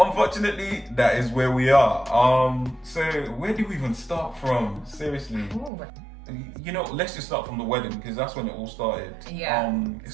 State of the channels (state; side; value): drops out; left; at 5.7 s